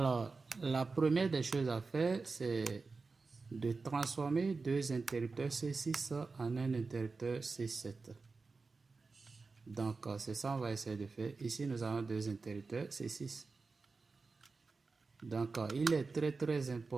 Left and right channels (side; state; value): left; quieter; 4.2 dB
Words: la première des choses à faire, c'est de transformer deux interrupteurs C6 en un interrupteur C7. Donc, c'est ça qu'on va essayer de faire. Ici, nous avons deux interrupteurs C6. Donc, il est très